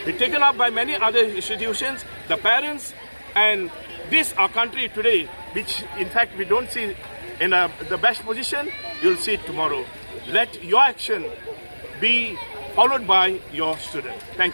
be taken up by many other institutions, the parents, and this our country today, which in fact we don't see in the best position, you'll see it tomorrow. Let your action be followed by your student.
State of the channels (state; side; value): inverted; both; correlation -1.00